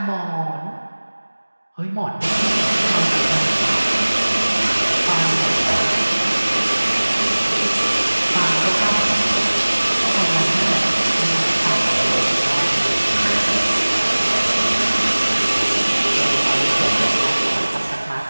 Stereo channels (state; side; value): inverted; both; correlation -1.00